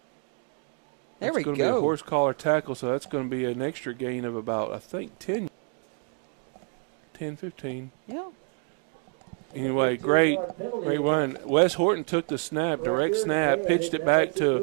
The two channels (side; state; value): left; quieter; 35.5 dB